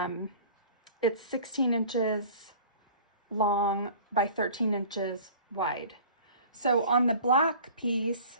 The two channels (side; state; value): both; inverted; correlation -0.44